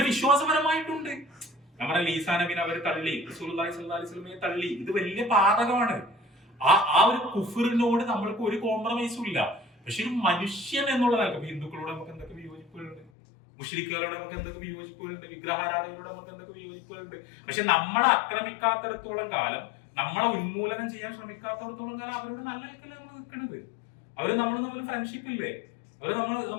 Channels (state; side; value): drops out; right; at 13.1 s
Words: വിശ്വാസപരമായിട്ടുണ്ട്. നമ്മുടെ ഈസാ നബിനെ അവർ തള്ളി, റസൂലുള്ളാഹി സ്വല്ലല്ലാഹു അലൈഹി വസല്ലമയെ തള്ളി. ഇത് വലിയ പാതകമാണ്. ആ ഒരു കുഫറിനോട് നമ്മൾക്ക് ഒരു കോംപ്രമൈസും ഇല്ല. പക്ഷെ ഒരു മനുഷ്യൻ എന്നുള്ള നിലക്ക് ഹിന്ദുക്കളോട് നമുക്ക് എന്തൊക്കെ വിയോജിപ്പുകളുണ്ട്, മുശ്രിക്കുകളോട് നമുക്ക് എന്തൊക്കെ വിയോജിപ്പുകളുണ്ട്, വിഗ്രഹാരാധകരോട് നമുക്ക് എന്തൊക്കെ വിയോജിപ്പുകളുണ്ട്. പക്ഷെ നമ്മളെ ആക്രമിക്കാത്തിടത്തോളം കാലം, നമ്മളെ ഉന്മൂലനം ചെയ്യാൻ ശ്രമിക്കാത്തിടത്തോളം കാലം അവരോട് നല്ല നിലക്കല്ലേ നമ്മൾ നിൽക്കണത്. അവര് നമ്മൾ തമ്മിൽ ഫ്രണ്ട്ഷിപ്പ് ഇല്ലേ, അവര്